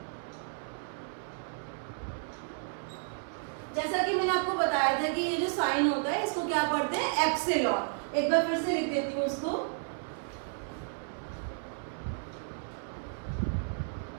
जैसा कि मैंने आपको बताया था कि ये जो साइन होता है इसको क्या पढ़ते हैं, एप्सिलॉन। एक बार फिर से लिख देती हूँ उसको।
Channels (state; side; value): silent; left; 56 dB below the other